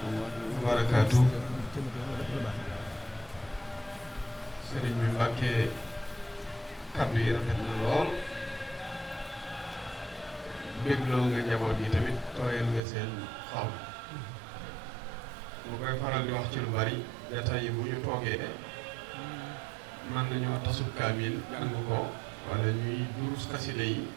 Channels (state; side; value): drops out; left; at 12.8 s